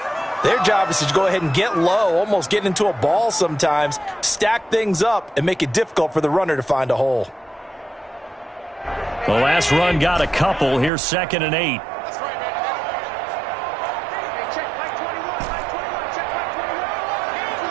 their job is to go ahead and get low, almost get into a ball sometimes, stack things up, and make it difficult for the runner to find a hole. The last run got a couple. Here's 2nd and 8.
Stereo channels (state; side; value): drops out; left; at 10.9 s